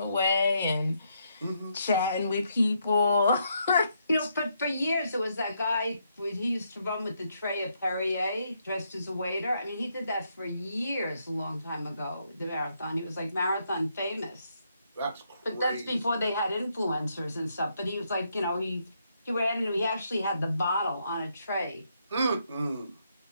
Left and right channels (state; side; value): inverted; both; correlation -0.77